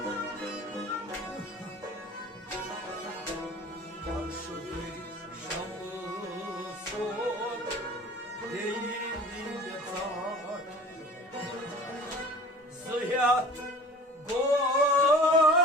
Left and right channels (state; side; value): normal; both; correlation 0.43